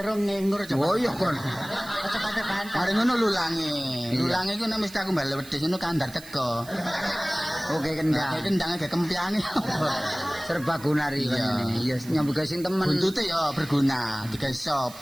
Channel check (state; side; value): noise; right; hiss, 18 dB below the sound